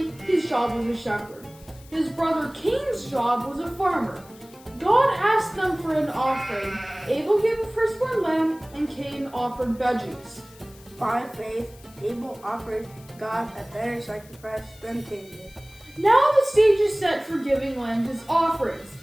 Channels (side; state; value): left; noise; hiss, 24 dB below the sound